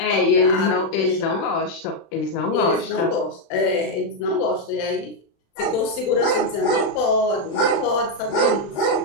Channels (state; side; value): late; right; 36 ms